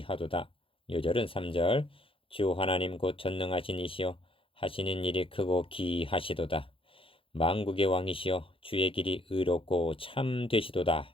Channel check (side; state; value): right; late; 0.26 ms